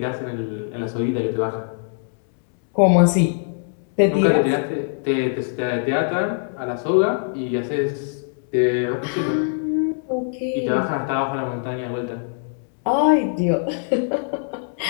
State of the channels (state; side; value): silent; right; digital silence